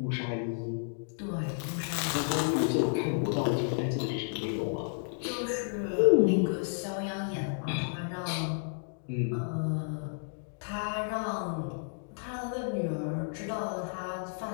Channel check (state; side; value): silent; right; digital silence